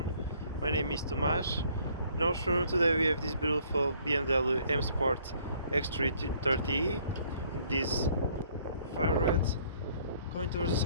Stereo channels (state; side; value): inverted; both; correlation -0.61